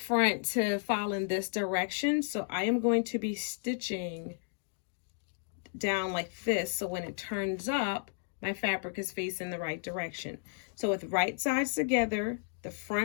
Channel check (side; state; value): right; silent; digital silence